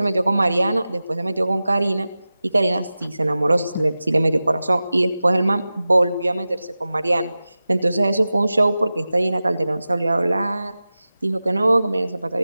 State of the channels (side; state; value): both; inverted; correlation -0.95